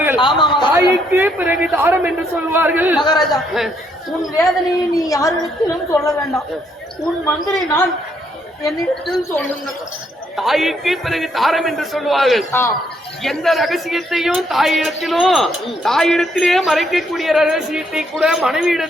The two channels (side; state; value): both; normal; correlation 0.72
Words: தாய்க்கு பிறகு தாரம் என்று சொல்வார்கள். மகாராஜா, உன் வேதனையை நீ யாரிடத்திலும் சொல்ல வேண்டாம். உன் மந்திரி நான் என்னிடத்தில் சொல்லுங்க. தாய்க்கு பிறகு தாரம் என்று சொல்வார்கள். எந்த ரகசியத்தையும் தாயிடத்திலே மறைக்கக்கூடிய ரகசியத்தை கூட